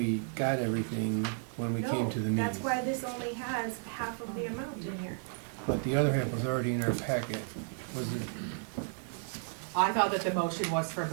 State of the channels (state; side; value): silent; left; 56 dB below the other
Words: got everything when we came to the No, meeting. that's why this only has half of the amount in here. But the other half was already in our packet. Was it? I thought that the motion was for